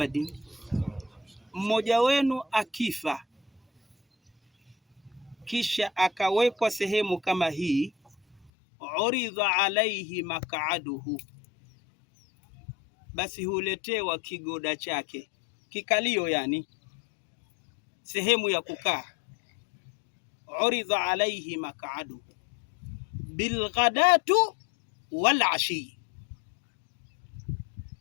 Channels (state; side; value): drops out; right; at 8.5 s